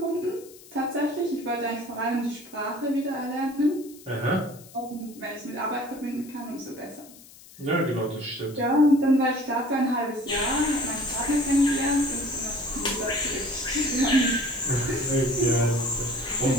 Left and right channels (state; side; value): noise; left; hiss, 21 dB below the sound